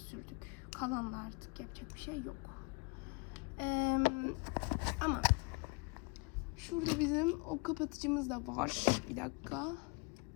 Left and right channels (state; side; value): quieter; right; 29.4 dB